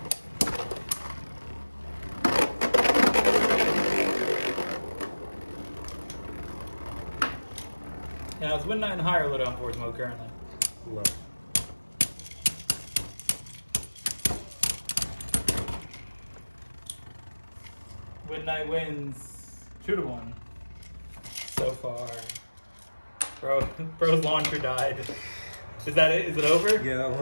Now, is Wind Knight in higher low down force mode currently? Low. Wind Knight wins 2-1 so far. Bro's launcher died. Is that it? Is it over? Yeah, that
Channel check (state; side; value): inverted; both; correlation -1.00